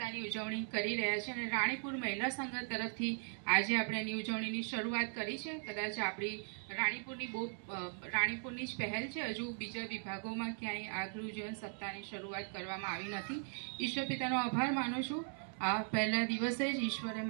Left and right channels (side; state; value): left; silent; 52 dB below the other